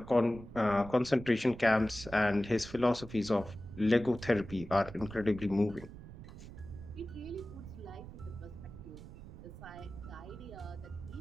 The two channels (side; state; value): right; noise; rumble, 14 dB below the sound